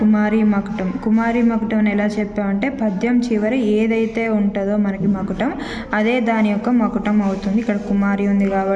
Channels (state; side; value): identical; both; correlation 1.00